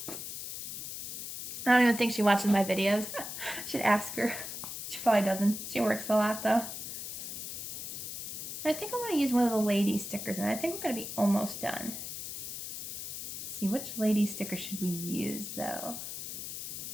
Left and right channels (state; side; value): noise; left; hiss, 7 dB below the sound